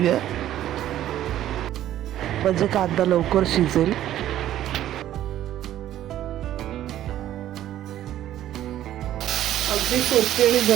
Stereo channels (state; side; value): quieter; left; 12.5 dB